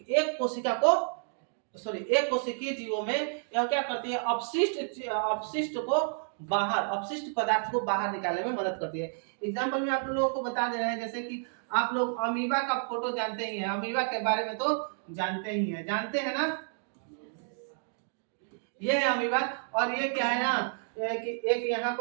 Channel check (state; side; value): silent; left; digital silence